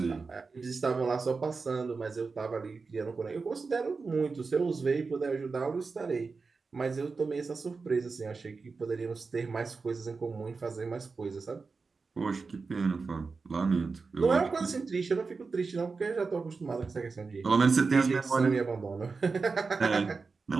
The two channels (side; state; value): left; quieter; 4.5 dB